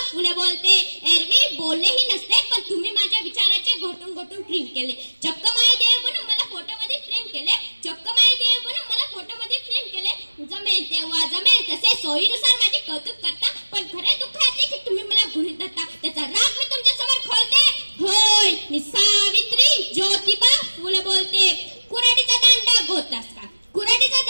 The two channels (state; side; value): inverted; both; correlation -1.00